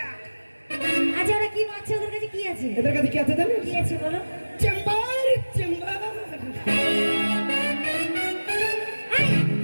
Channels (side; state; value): both; inverted; correlation -1.00